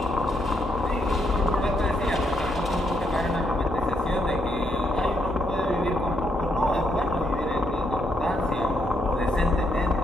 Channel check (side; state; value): both; normal; correlation 0.76